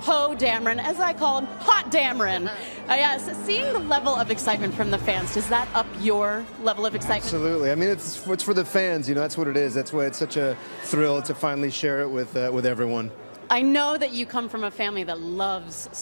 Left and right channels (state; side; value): inverted; both; correlation -1.00